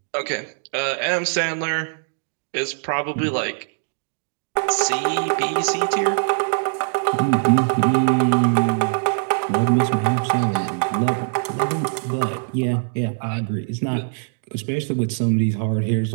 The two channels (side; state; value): left; silent; digital silence